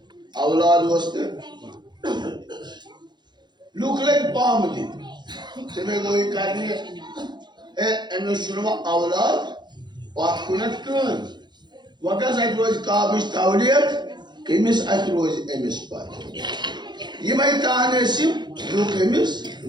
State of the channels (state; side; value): late; left; 0.21 ms